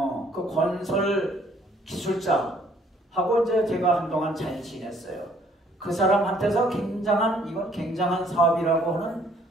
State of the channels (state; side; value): normal; both; correlation 0.62